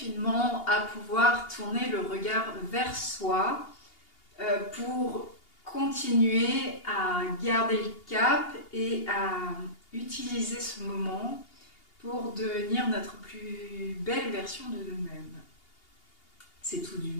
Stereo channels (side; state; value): right; late; 2.8 ms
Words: à pouvoir tourner le regard vers soi pour continuer à garder le cap et à utiliser ce moment pour devenir notre plus belle version de nous-mêmes. C'est tout du